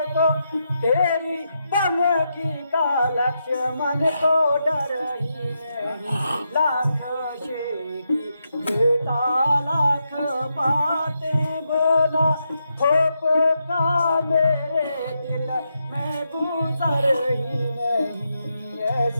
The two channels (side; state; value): both; inverted; correlation -0.84